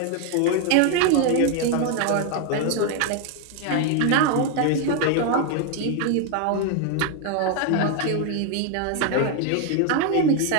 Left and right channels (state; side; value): different; both; correlation 0.01